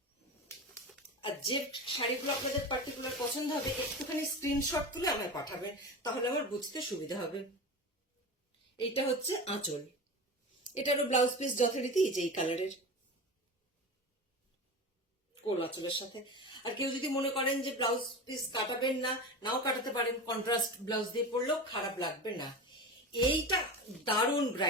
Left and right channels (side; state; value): both; normal; correlation 0.28